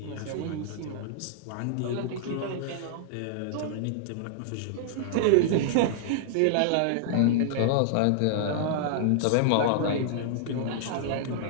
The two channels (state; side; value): different; both; correlation -0.01